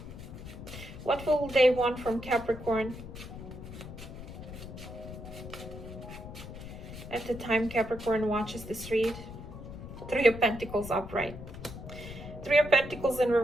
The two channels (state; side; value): noise; left; rumble, 12 dB below the sound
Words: What will they want from Capricorn? At the time Capricorn watches this read. Three of Pentacles upright. Three of Pentacles in